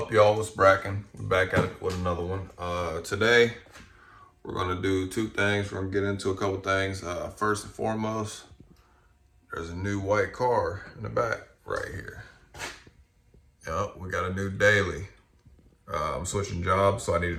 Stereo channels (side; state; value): both; identical; correlation 1.00